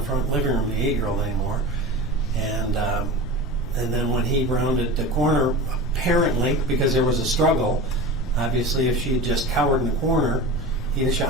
front living room, the 8-year-old anymore. And then when he rounded the corner, apparently, because there was a struggle, obviously if she had just cowered in the corner, he'd have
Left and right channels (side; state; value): both; normal; correlation 0.31